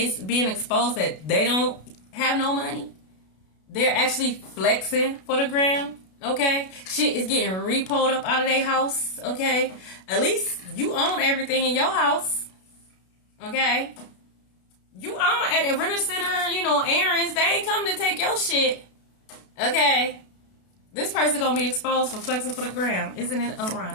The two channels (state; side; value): late; right; 32 ms